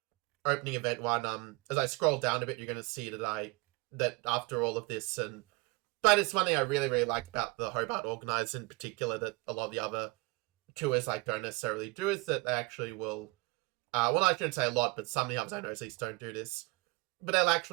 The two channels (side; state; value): left; quieter; 26.0 dB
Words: opening event one, as I scroll down a bit, you're going to see that after all of this, but it's one thing I really, really like about the Hobart organizers in particular that a lot of the other tours like don't necessarily do, is that they actually will, well, I shouldn't say a lot, but some of the others I know at least don't do this, but they'll